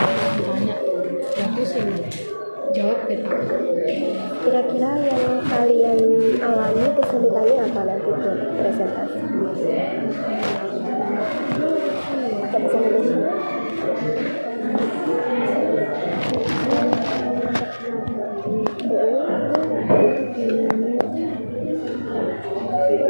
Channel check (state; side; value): inverted; both; correlation -1.00